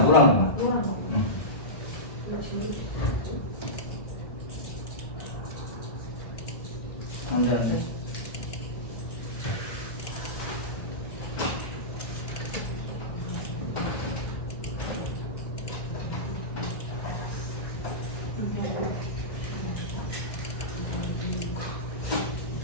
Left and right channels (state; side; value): late; right; 2.1 ms